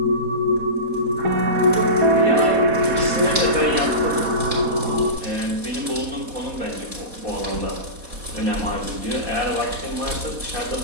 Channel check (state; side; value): late; left; 4.1 ms